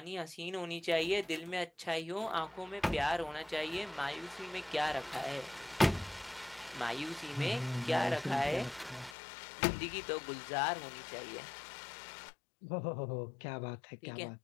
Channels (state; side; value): drops out; right; at 9.2 s